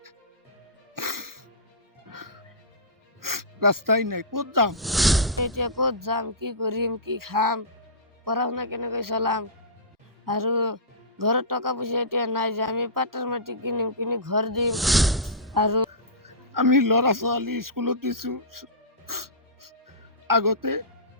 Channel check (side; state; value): both; normal; correlation -0.17